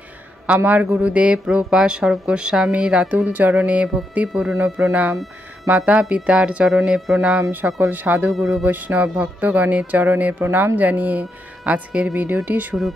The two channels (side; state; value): both; normal; correlation 0.81